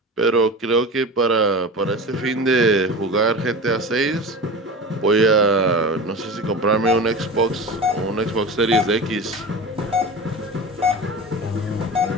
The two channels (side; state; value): both; normal; correlation 0.30